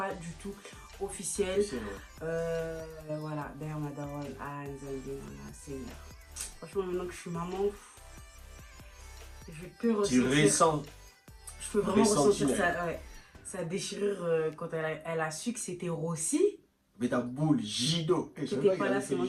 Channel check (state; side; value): identical; both; correlation 1.00